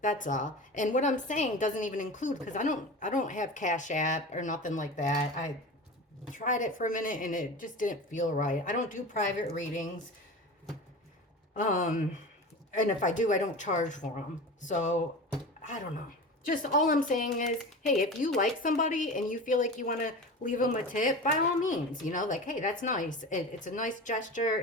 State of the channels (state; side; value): normal; both; correlation 0.31